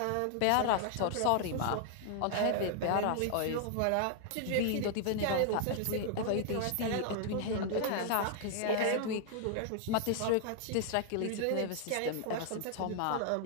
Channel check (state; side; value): different; both; correlation 0.00